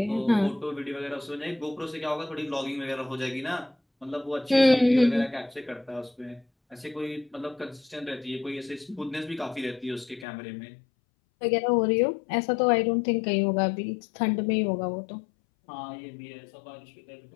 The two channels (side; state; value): right; drops out; at 10.2 s